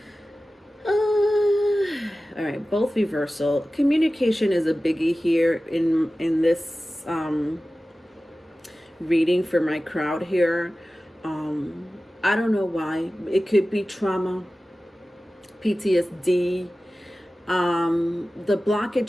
All right, both reversal. Communication is a biggie here in this reading for my crowd here. I don't know why. It could be trauma, PTSD, The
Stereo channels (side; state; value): both; normal; correlation 0.96